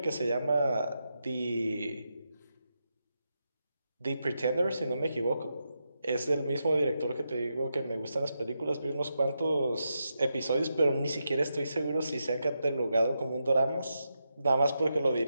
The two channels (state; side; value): inverted; both; correlation -0.86